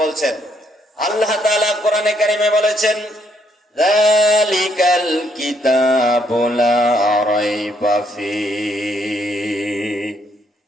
বলছেন। আল্লাহ তাআলা কোরআনে কারিমে বলেছেন, যালিকাল কিতাবু লা রাইবা ফীহি,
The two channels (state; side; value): normal; both; correlation 0.71